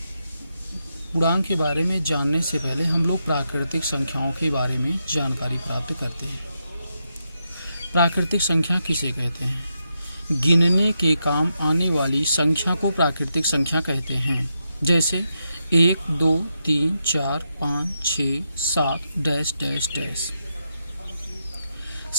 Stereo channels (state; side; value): inverted; both; correlation -0.84